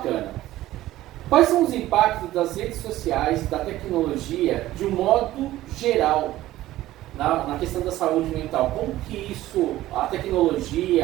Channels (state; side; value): quieter; left; 15.3 dB